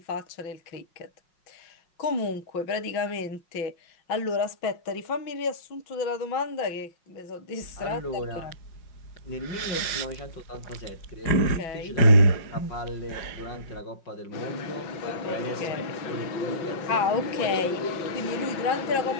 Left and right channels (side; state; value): right; late; 5.5 ms